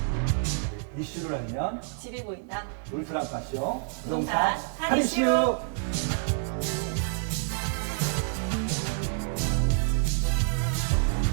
이슈를 알면 집이 보인다. 울트라 파쇼 부동산 할인 할인쇼. 이슈.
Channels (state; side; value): silent; left; digital silence